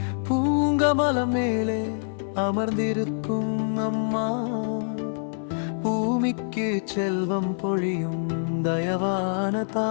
பூங்கமலம் மேலே அமர்ந்திருக்கும் அம்மா. பூமிக்கு செல்வம் பொழியும் தயவான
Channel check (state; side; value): silent; right; 61 dB below the other